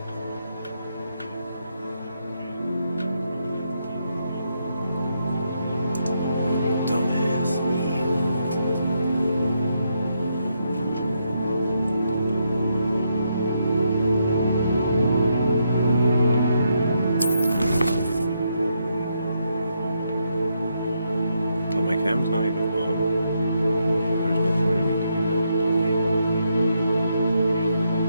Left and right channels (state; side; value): inverted; both; correlation -0.79